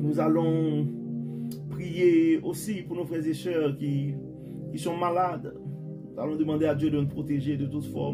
prier aussi pour nos frères et sœurs qui sont malades. Nous allons demander à Dieu de nous protéger de toute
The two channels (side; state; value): both; identical; correlation 1.00